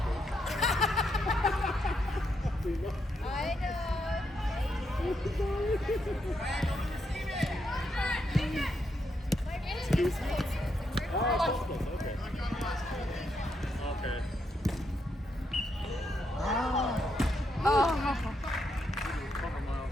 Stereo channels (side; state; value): both; normal; correlation 0.79